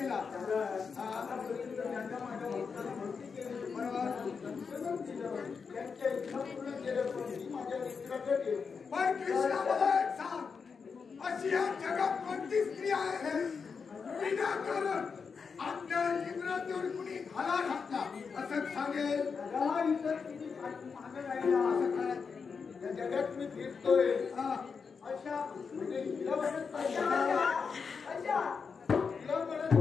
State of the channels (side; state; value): right; quieter; 5.6 dB